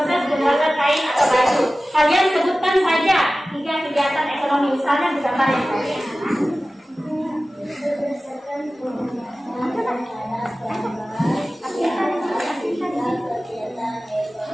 pembuatan kain atau baju. Kalian sebutkan saja 3 kegiatan ekonomi, misalnya di gambar yang tadi.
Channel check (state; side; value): normal; both; correlation 0.96